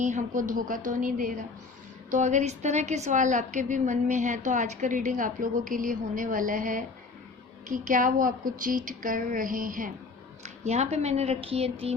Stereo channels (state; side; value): quieter; right; 4.2 dB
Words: हमको धोखा तो नहीं दे रहा। तो अगर इस तरह के सवाल आपके भी मन में हैं तो आज का रीडिंग आप लोगों के लिए होने वाला है कि क्या वो आपको चीट कर रहे हैं। यहाँ पे मैंने रखी है